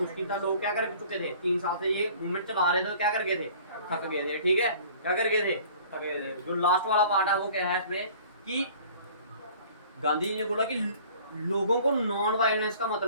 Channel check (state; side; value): inverted; both; correlation -0.49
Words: था, लोग क्या कर चुके थे, 3 साल से ये मूवमेंट चला रहे थे, तो क्या कर गए थे, थक गए थे। ठीक है, क्या कर गए थे, थक गए थे। जो लास्ट वाला पार्ट है वो क्या है इसमें कि गांधी जी ने बोला कि लोगों को नॉन वायलेंस का